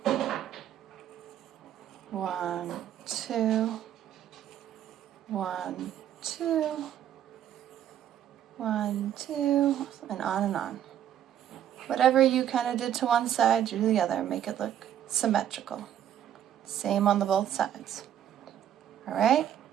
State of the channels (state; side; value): quieter; left; 10.6 dB